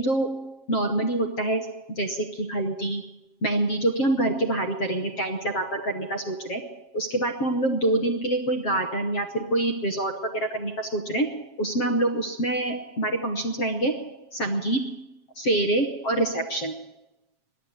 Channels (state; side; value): late; right; 7.5 ms